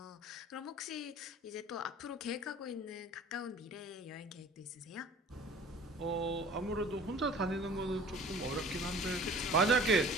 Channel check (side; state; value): both; normal; correlation 0.46